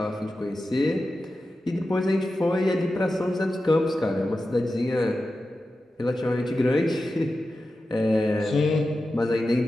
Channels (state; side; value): normal; both; correlation 0.92